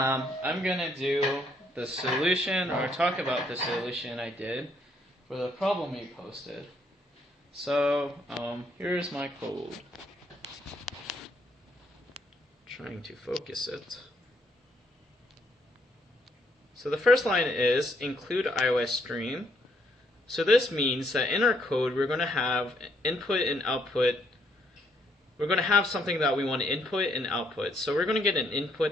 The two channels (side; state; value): both; normal; correlation 0.71